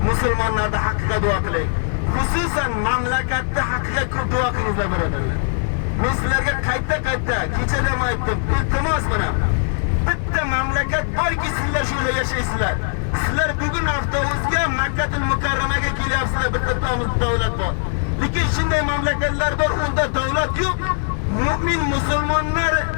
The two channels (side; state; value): right; silent; 56 dB below the other